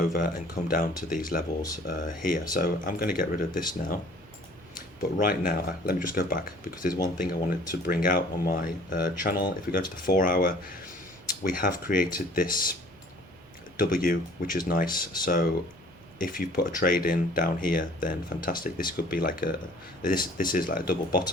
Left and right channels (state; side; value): normal; both; correlation 0.53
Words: and come down to these levels here. So I'm going to get rid of this now. But right now, let me just go back, because there's one thing I wanted to bring out on my channel. If we go to the 4 hour, we have created this W, which is nice. So if you put a trade in down here, then fantastic. This could be like this is like a double